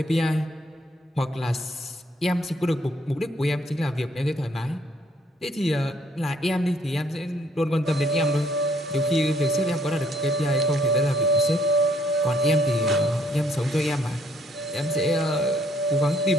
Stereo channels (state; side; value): normal; both; correlation 0.65